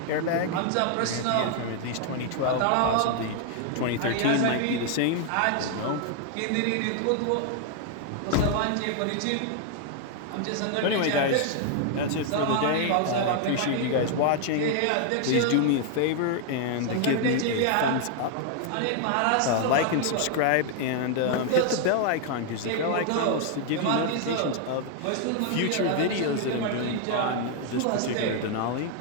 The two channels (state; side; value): different; both; correlation 0.00